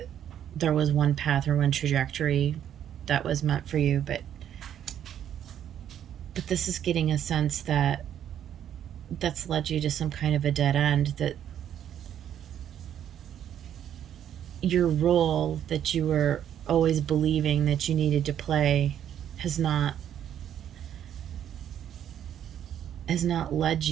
there was one path or one trajectory that was meant for you, but this is getting a sense that that's led you to some kind of a dead end, that your role that you were always believing that you needed to play has not led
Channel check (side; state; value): left; quieter; 10.0 dB